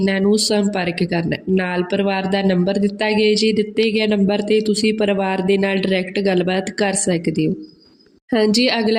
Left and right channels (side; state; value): both; identical; correlation 1.00